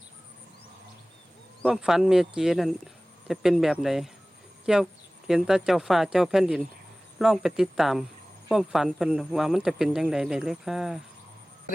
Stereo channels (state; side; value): normal; both; correlation 0.98